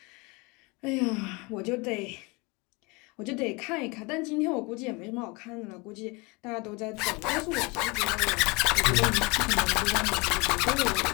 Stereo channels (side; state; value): right; quieter; 27.3 dB